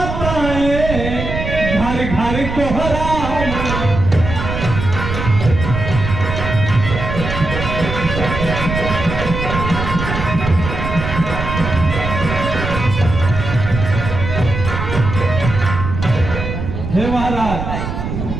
घर घर कोहराएं। हे महाराज,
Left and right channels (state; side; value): noise; right; rumble, 5 dB below the sound